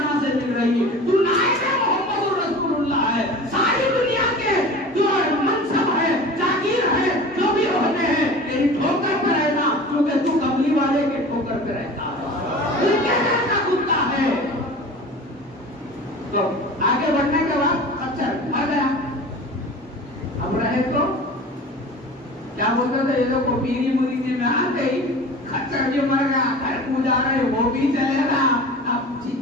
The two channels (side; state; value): both; normal; correlation 0.38